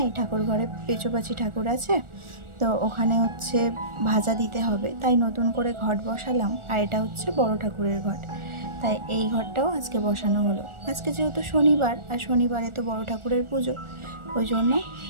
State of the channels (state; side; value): late; left; 1.4 ms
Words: এই ঠাকুর ঘরে পেঁচোপাচি ঠাকুর আছে, তো ওখানে হচ্ছে ভাজা দিতে হবে, তাই নতুন করে ঘট বসালাম। আর এটা হচ্ছে বড় ঠাকুরের ঘট, তাই এই ঘরটাও আজকে বসানো হলো। আজকে যেহেতু শনিবার, আর শনিবারে তো বড় ঠাকুরের পুজো, ওই জন্য